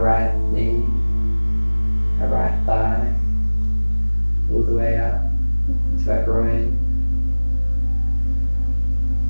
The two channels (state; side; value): inverted; both; correlation -1.00